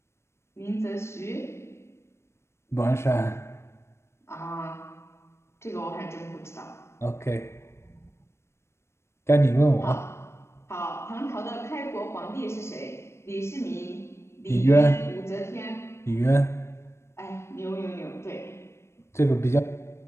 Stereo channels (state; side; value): late; right; 0.13 ms